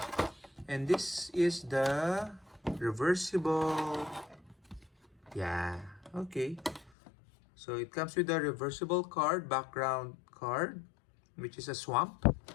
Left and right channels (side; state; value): right; drops out; at 6.9 s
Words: And this is the reversible. Yeah, okay. So it comes with a reversible card, background card, which is a swamp.